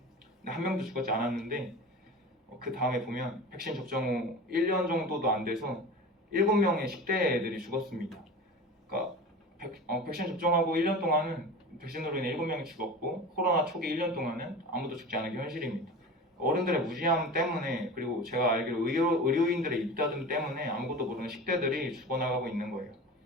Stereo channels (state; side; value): normal; both; correlation 0.33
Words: 한 명도 죽지 않았는데 그 다음에 보면 백신 접종 후 1년 정도도 안 돼서 7명의 10대 애들이 죽었습니다. 그러니까 백신 접종하고 1년 동안은 백신으로 인해 7명이 죽었고 코로나 초기 1년 동안은 아무도 죽지 않은 게 현실입니다. 어른들의 무지함 때문에 그리고 제가 알기로 의료인들의 입다툼 때문에 아무것도 모르는 10대들이 죽어나가고 있는 거예요.